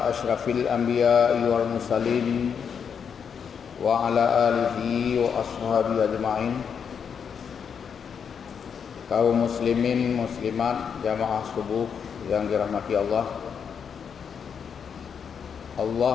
asyrafil anbiya'i wal mursalin wa ala alihi wa ashabihi ajma'in. Kaum muslimin muslimat jamaah subuh yang dirahmati Allah.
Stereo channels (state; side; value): quieter; right; 7.0 dB